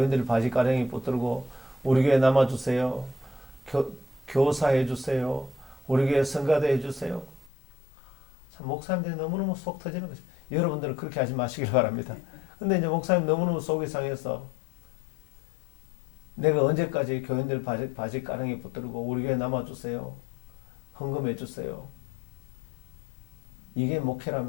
바지 가랭이 붙들고 우리 교회 남아주세요. 교사해 주세요. 우리 교회 성가대 해주세요. 참 목사님들이 너무너무 속 터지는 것입니다. 여러분들은 그렇게 하지 마시길 바랍니다. 근데 이제 목사님 너무너무 속이 상해서 내가 언제까지 교인들 바지 가랑이 붙들고 우리 교회 남아주세요. 헌금해 주세요. 이게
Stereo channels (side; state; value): right; drops out; at 7.5 s